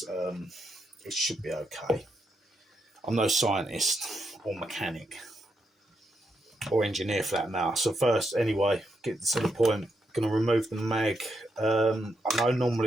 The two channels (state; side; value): normal; both; correlation 0.81